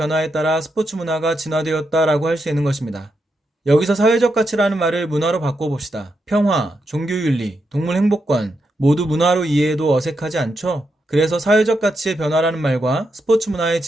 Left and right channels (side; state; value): both; normal; correlation 0.84